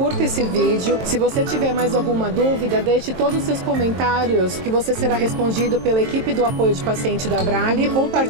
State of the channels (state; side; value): late; left; 23 ms